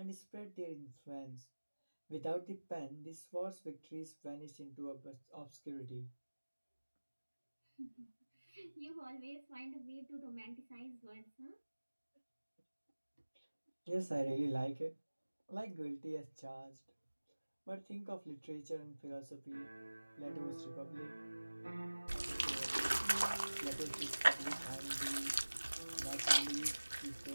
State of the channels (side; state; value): both; inverted; correlation -1.00